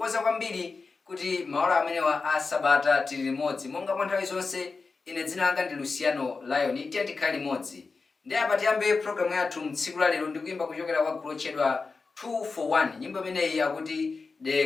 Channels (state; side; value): quieter; right; 4.3 dB